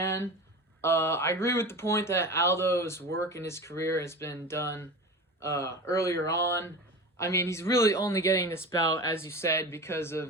I agree with the point that Aldo's work in his career has been done earlier on. I mean, he's really only getting this bout, as you said, because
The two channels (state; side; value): normal; both; correlation 0.30